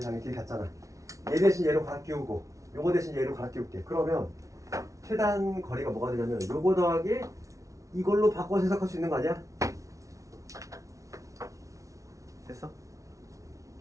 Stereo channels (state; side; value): late; left; 0.16 ms